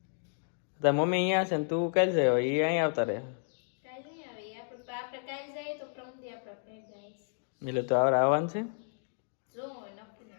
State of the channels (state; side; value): silent; right; digital silence